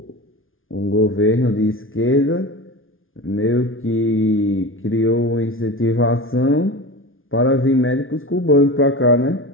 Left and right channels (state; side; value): late; right; 0.59 ms